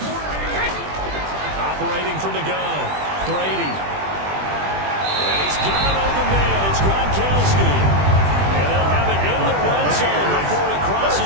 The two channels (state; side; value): late; left; 20 ms